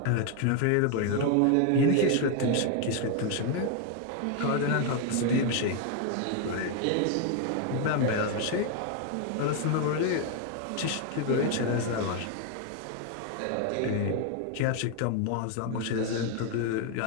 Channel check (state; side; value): different; both; correlation 0.01